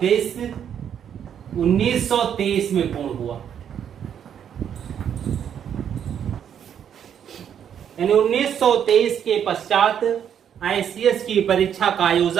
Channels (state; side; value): quieter; left; 8.8 dB